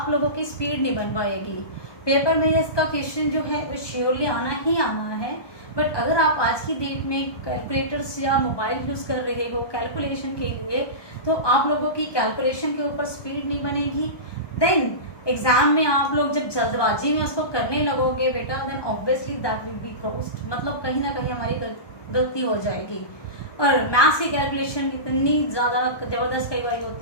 लोगों की स्पीड नहीं बन पाएगी. पेपर में इसका क्वेश्चन जो है वो श्योरली आना ही आना है. बट अगर आप आज की डेट में कैलकुलेटर्स या मोबाइल यूज़ कर रहे हो कैलकुलेशन के लिए, तो आप लोगों की कैलकुलेशन के ऊपर स्पीड नहीं बनेगी. देन एग्जाम में आप लोग जब जल्दबाजी में उसको करने लगोगे बेटा, then obviously that will be crossed. मतलब कहीं ना कहीं हमारी गलती हो जाएगी. और मैथ्स की कैलकुलेशन इतनी ज़्यादा ज़बरदस्त कई बार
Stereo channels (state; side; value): late; right; 1.2 ms